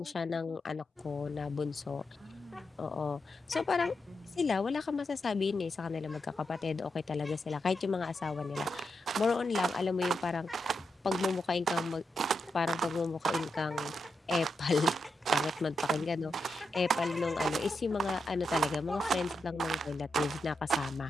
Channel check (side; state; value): both; normal; correlation 0.85